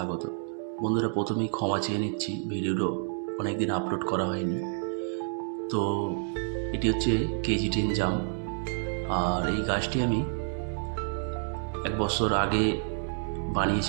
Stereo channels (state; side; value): silent; left; 58 dB below the other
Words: বন্ধুরা, প্রথমেই ক্ষমা চেয়ে নিচ্ছি, ভিডিওটা অনেক দিন আপলোড করা হয়নি। তো এটি হচ্ছে KG10 জাম, আর এই গাছটি আমি 1 বছর আগে